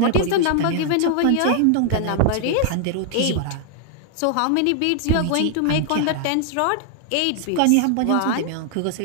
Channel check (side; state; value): both; different; correlation 0.00